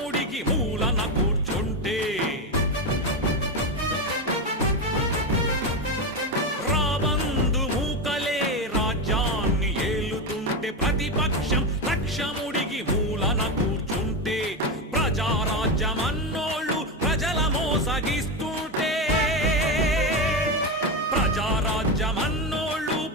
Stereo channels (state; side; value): normal; both; correlation 0.13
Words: మూలన కూర్చుంటే రాబందు మూకలే రాజ్యాన్ని ఏలుతుంటే ప్రతిపక్షం లక్షముడికి మూలన కూర్చుంటే ప్రజారాజ్యమన్నోళ్ళు ప్రజల మోసగిస్తుంటే ప్రజారాజ్యమన్నోళ్ళు